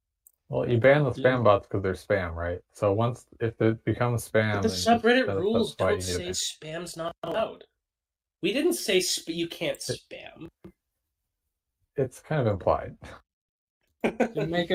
Well, you ban the spam bots because they're spam, right? So if it becomes spam, but the subreddit rules don't say spam's not allowed. We didn't say you can't spam. It's kind of implied. You make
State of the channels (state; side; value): identical; both; correlation 1.00